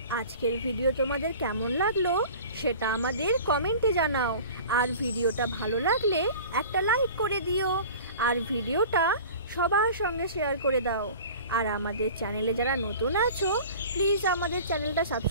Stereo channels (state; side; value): inverted; both; correlation -0.41